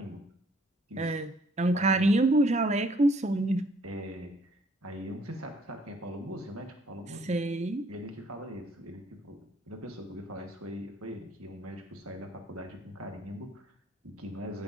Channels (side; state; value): both; normal; correlation 0.62